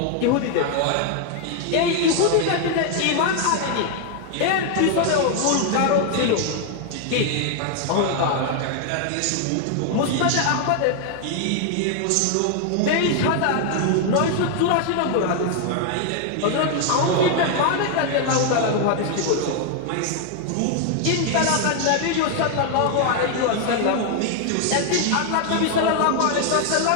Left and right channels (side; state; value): both; different; correlation 0.00